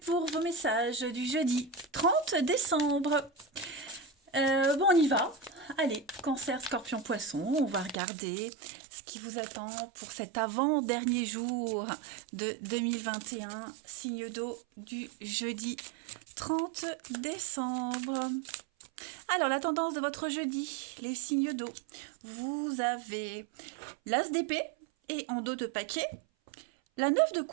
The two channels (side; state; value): left; drops out; at 8.0 s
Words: pour vos messages du jeudi 30 décembre. Bon, on y va. Allez, Cancer, Scorpion, Poisson, on va regarder ce qui vous attend pour cet avant-dernier jour de 2021, signe d'eau du jeudi 30 décembre. Alors, la tendance de votre jeudi, les signes d'eau. Vous avez l'as d'épée et en dos de paquet, la 9 de